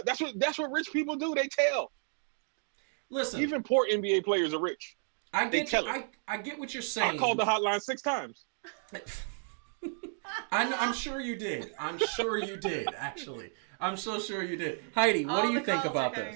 That's what rich people do. They tell. Listen, Even poor NBA players are rich. I They get tell you, it. I get what you're saying. I called the hotline 6 times. I'm sure you did. I'm sure you did. Actually, I'm so sure you did. Heidi, what do you think about coming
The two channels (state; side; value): silent; left; 56 dB below the other